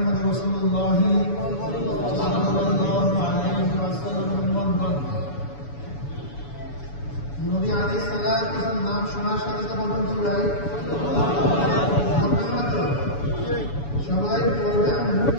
রাসূলুল্লাহ সাল্লাল্লাহু আলাইহি ওয়াসাল্লামের উম্মত নবী আলাইহিস সালাতু ওয়াস সালাম নাম শোনার সাথে সাথে বলুন তো ভাই সবাই পড়বেন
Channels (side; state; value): right; late; 7.0 ms